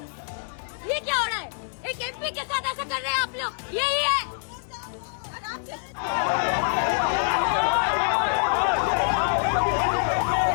ये क्या हो रहा है? एक एमपी के साथ ऐसा कर रहे हैं आप लोग, यही है।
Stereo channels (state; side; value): silent; right; 61 dB below the other